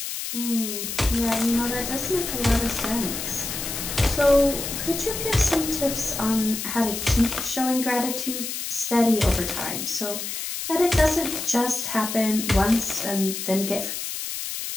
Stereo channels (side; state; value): left; noise; hiss, 5 dB below the sound